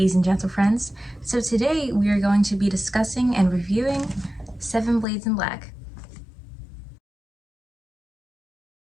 and gentle friends. So today we are going to be discussing and reviewing Seven Blades in Black.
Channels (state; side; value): drops out; right; at 5.1 s